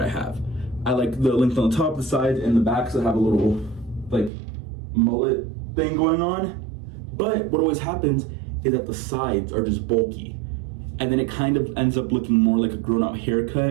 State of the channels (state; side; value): drops out; left; at 4.3 s